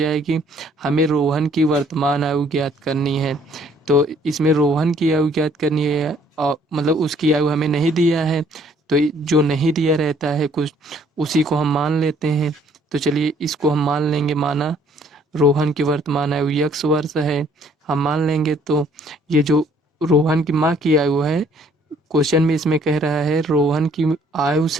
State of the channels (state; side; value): normal; both; correlation 0.62